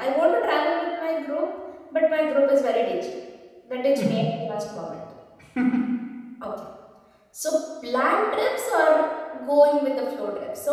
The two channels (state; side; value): identical; both; correlation 1.00